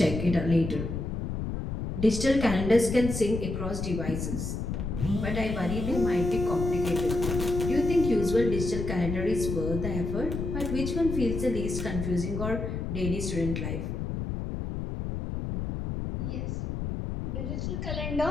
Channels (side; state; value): left; noise; rumble, 4 dB below the sound